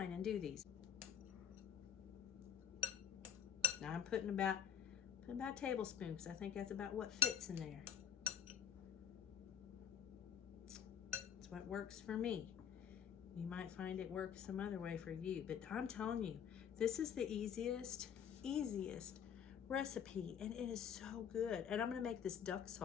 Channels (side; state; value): right; quieter; 8.6 dB